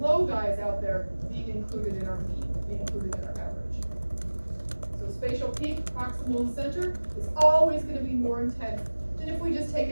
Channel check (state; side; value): inverted; both; correlation -1.00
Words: guys out there being included in our beam, being included in our average. So spatial peak, proximal and center, is always going to be more intense than if we just take